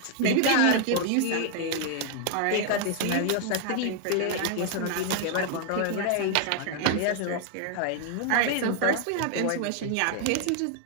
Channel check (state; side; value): different; both; correlation 0.00